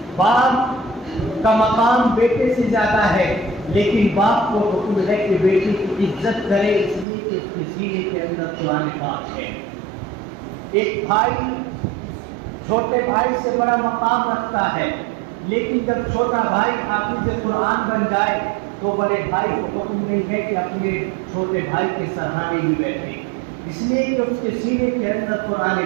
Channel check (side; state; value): left; drops out; at 7.1 s